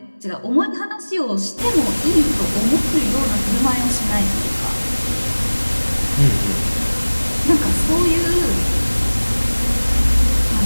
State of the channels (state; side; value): inverted; both; correlation -1.00